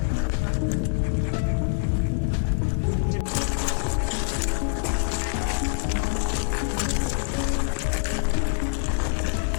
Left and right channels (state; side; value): silent; right; 62 dB below the other